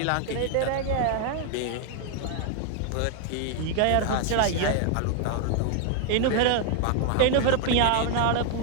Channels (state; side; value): different; both; correlation 0.00